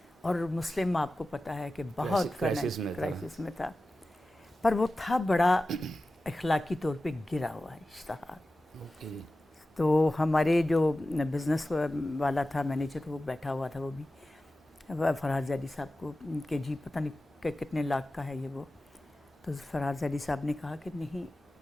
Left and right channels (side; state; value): both; normal; correlation 0.95